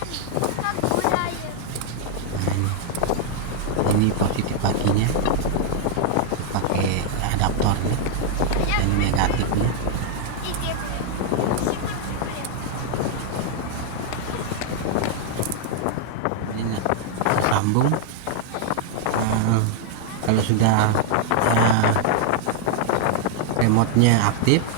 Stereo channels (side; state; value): both; different; correlation 0.00